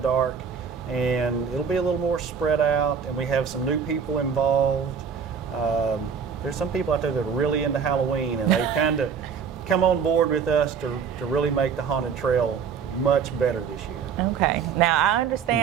and it'll be a little more spread out. And we have some new people involved. There's some people out there that are really into Halloween, and they kind of come on board with us to really make the haunted trail much better this year. Okay. Now I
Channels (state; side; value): quieter; left; 6.6 dB